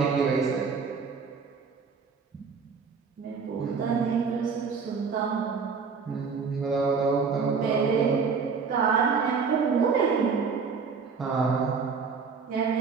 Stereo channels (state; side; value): quieter; left; 5.5 dB